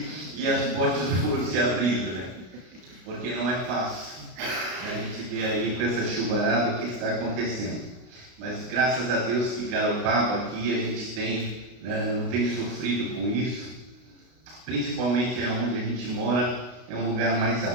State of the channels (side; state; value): left; late; 33 ms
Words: e as portas foram se abrindo, né? Porque não é fácil. A gente vê aí com essa chuvarada o que está acontecendo. Mas graças a Deus que Garopaba aqui a gente não tem sofrido com isso. Principalmente onde a gente mora, é um lugar mais